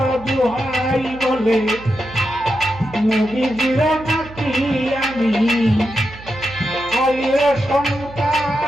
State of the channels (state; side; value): noise; right; hum, 17 dB below the sound